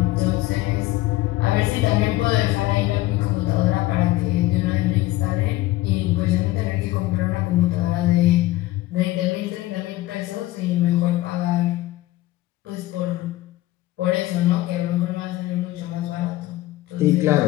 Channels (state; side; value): quieter; right; 17.0 dB